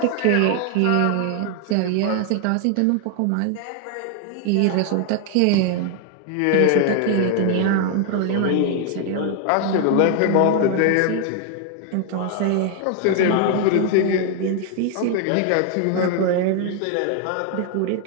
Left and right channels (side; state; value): both; different; correlation 0.00